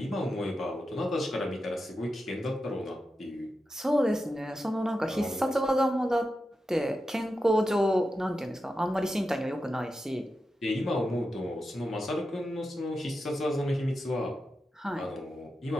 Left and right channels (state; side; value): normal; both; correlation 0.90